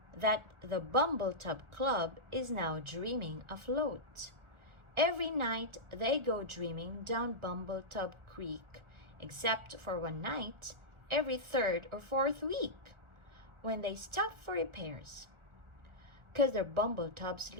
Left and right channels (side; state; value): left; late; 1.4 ms